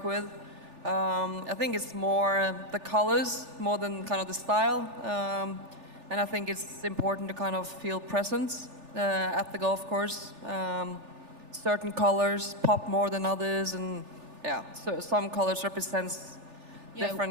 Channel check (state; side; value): late; left; 3.4 ms